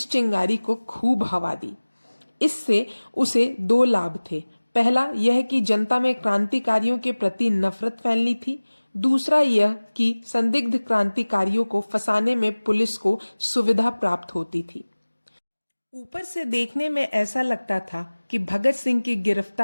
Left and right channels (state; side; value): inverted; both; correlation -1.00